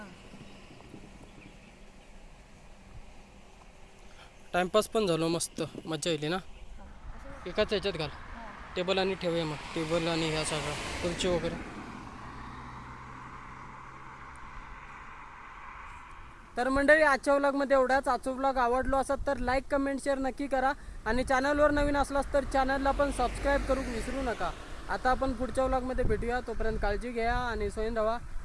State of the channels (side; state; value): both; identical; correlation 1.00